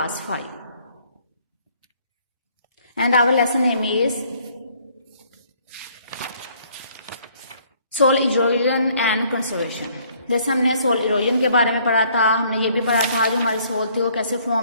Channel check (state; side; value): inverted; both; correlation -0.62